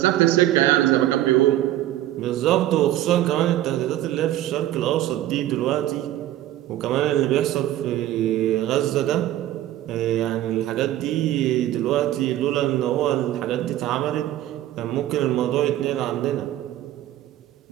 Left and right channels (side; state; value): left; quieter; 13.6 dB